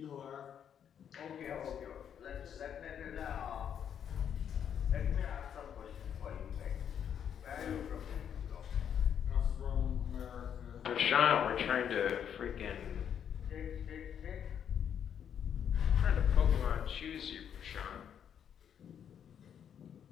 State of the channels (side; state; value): right; quieter; 8.6 dB